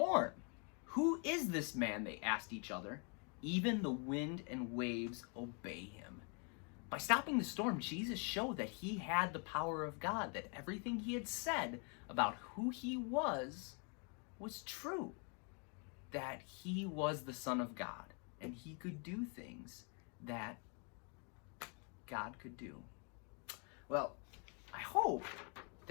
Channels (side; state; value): right; quieter; 37.2 dB